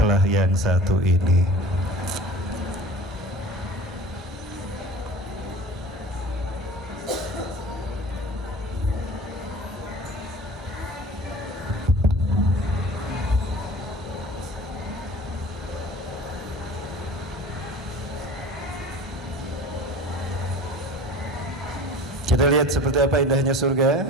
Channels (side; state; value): both; normal; correlation 0.41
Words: yang satu ini. Kita lihat seperti apa indahnya surga.